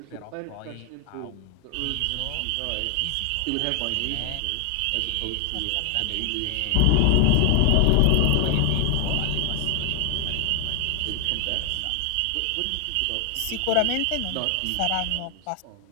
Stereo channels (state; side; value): different; both; correlation 0.01